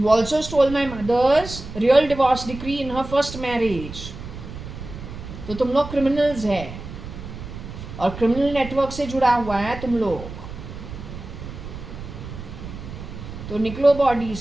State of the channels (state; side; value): noise; right; rumble, 11 dB below the sound